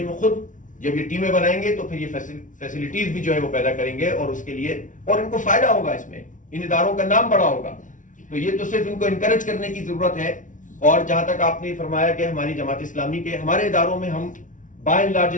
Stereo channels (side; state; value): right; late; 0.37 ms